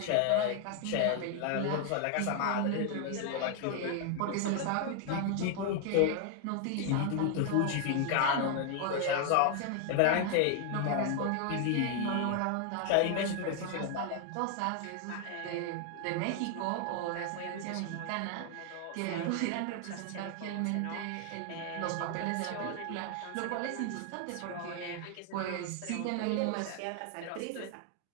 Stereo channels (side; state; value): both; different; correlation 0.00